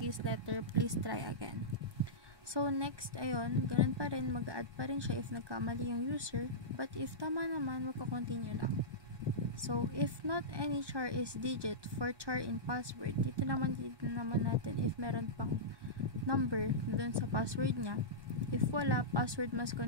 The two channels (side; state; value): left; late; 1.3 ms